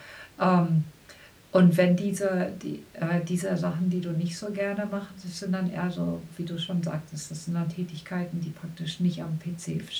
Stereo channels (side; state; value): both; identical; correlation 1.00